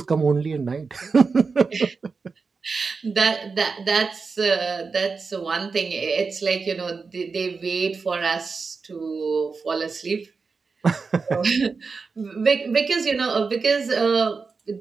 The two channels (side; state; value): left; quieter; 4.7 dB